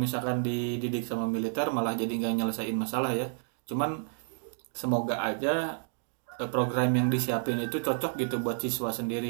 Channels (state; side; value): silent; left; digital silence